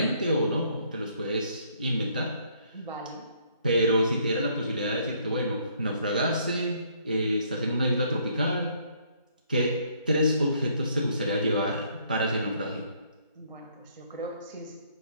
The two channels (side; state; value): both; inverted; correlation -0.66